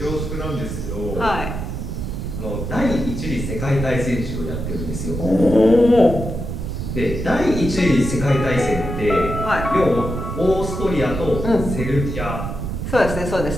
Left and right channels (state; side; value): noise; right; rumble, 5 dB below the sound